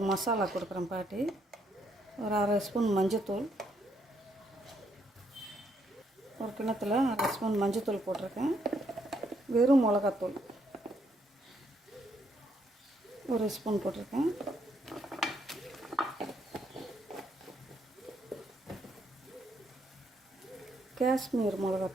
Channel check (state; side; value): normal; both; correlation 0.73